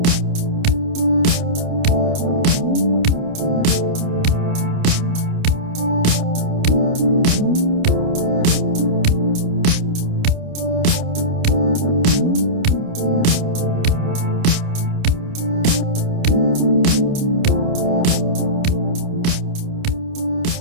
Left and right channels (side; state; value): left; late; 29 ms